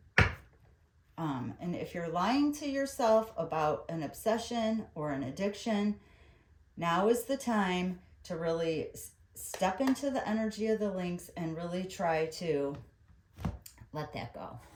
And if you're lying to yourself about an obsession or an addiction, now is the time to really step into the energy of the Lynx and really try to let that go.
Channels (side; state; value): both; identical; correlation 1.00